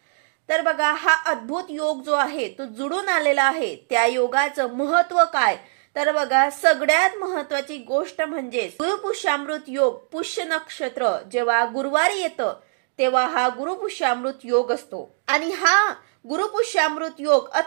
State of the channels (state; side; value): silent; left; digital silence